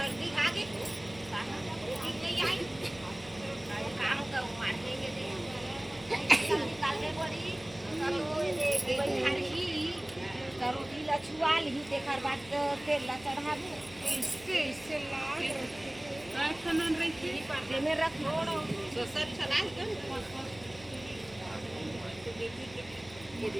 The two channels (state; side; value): noise; left; hum, 20 dB below the sound